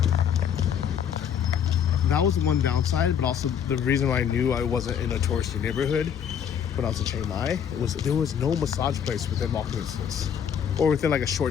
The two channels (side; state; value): right; quieter; 8.3 dB